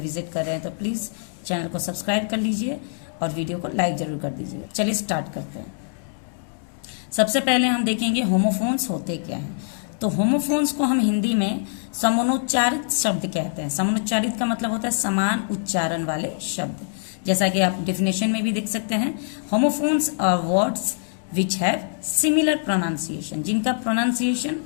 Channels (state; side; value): silent; right; digital silence